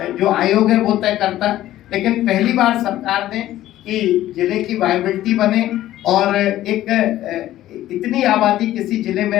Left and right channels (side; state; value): right; quieter; 14.0 dB